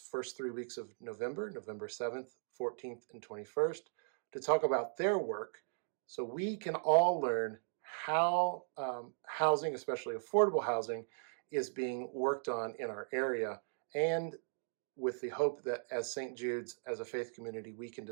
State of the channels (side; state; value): left; silent; digital silence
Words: 3 weeks of November 7th, 14th, and 21st, to talk about their work so we can all learn how housing, especially affordable housing, is being worked on in our area, and with the hope that as St. Jude's, as a faith community, we can